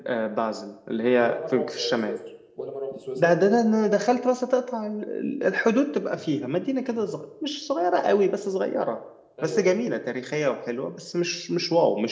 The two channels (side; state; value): both; identical; correlation 1.00